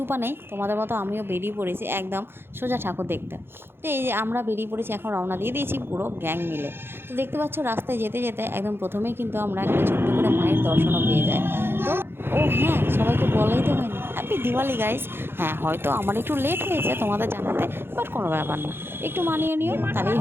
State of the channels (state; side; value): late; left; 0.11 ms